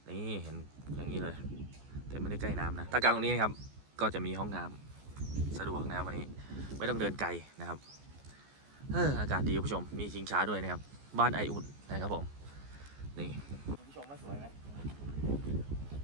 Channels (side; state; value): left; late; 14 ms